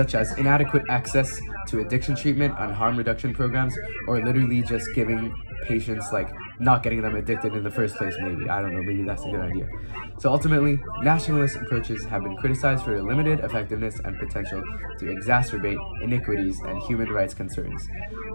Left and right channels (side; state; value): both; inverted; correlation -1.00